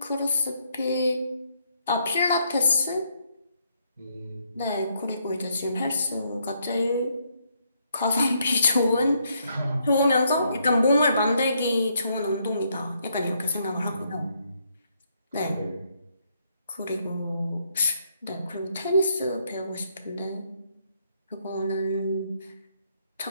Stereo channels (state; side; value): inverted; both; correlation -0.73